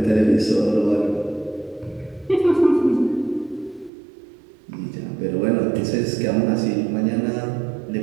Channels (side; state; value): left; drops out; at 3.9 s